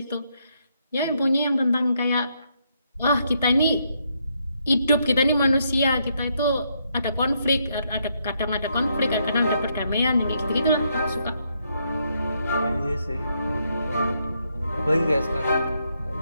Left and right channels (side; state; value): both; inverted; correlation -0.76